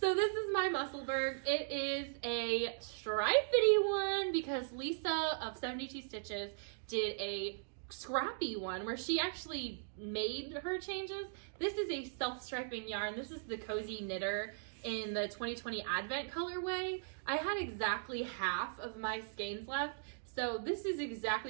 this is my Musselburgh. It is a stripedy one because Lisa of 72 Stitches did a scrappy one where she actually made her changes. This is a self-striping yarn. This is the Cozy Knitter in the 2020 Advent colorway. I had exactly half of my skeins left. So this is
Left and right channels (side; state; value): left; silent; digital silence